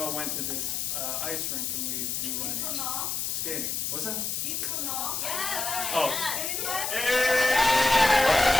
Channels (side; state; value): left; noise; hiss, 2 dB below the sound